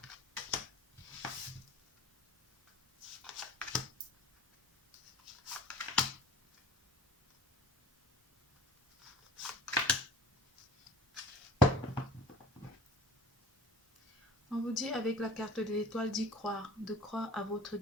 On vous dit avec la carte de l'étoile d'y croire, de croire à votre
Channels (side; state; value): both; normal; correlation 0.44